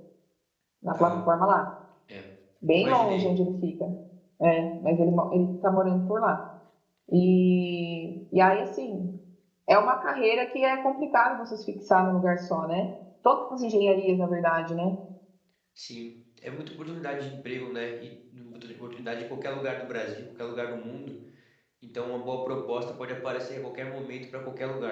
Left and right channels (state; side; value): identical; both; correlation 1.00